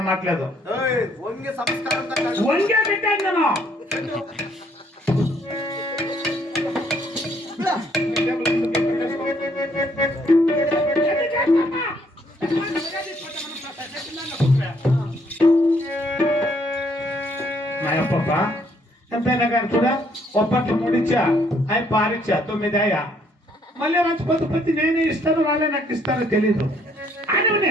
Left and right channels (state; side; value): normal; both; correlation 0.67